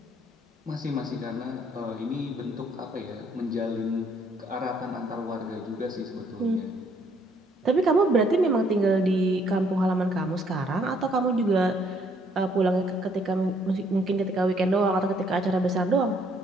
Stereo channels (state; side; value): normal; both; correlation 0.66